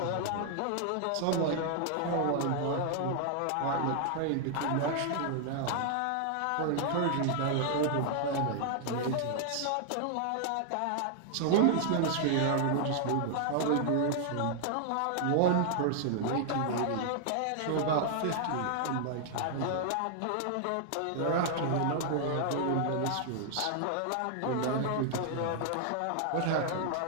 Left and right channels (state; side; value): different; both; correlation -0.01